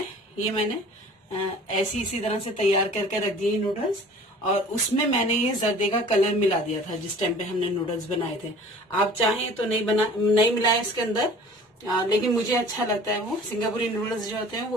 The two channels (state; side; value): normal; both; correlation 0.46